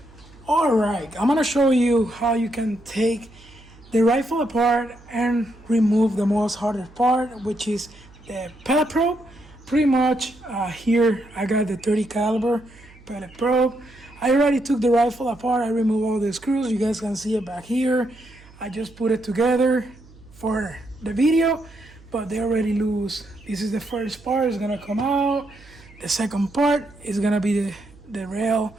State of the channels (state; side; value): noise; right; hum, 24 dB below the sound